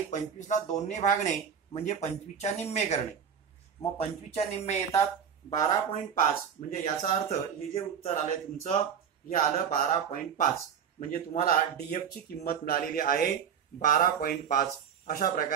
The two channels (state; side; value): quieter; left; 7.7 dB